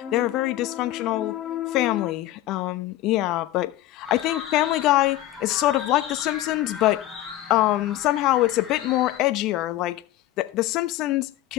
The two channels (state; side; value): quieter; right; 14.9 dB